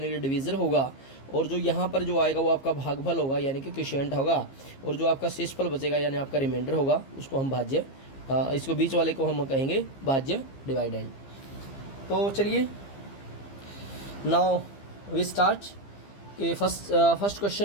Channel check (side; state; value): right; late; 15 ms